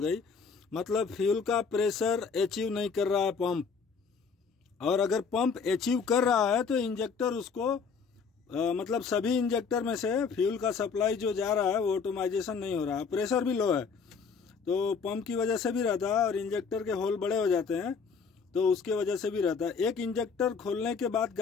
मतलब फ्यूल का प्रेशर अचीव नहीं कर रहा है पंप। और अगर पंप अचीव कर रहा है तो इंजेक्टर उसको मतलब सभी इंजेक्टर में से फ्यूल का सप्लाई जो जा रहा है वो ऑटोमाइजेशन नहीं हो रहा है। प्रेशर भी लो है तो पंप की वजह से भी रहता है और इंजेक्टर के होल बड़े हो जाते हैं तो उसके वजह से भी रहता है। एक इंजेक्टर खोलने के बाद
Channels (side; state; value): right; quieter; 5.6 dB